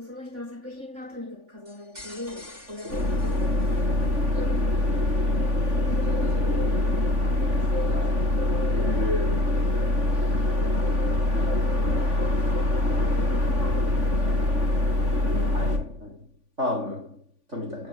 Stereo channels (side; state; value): left; late; 3.5 ms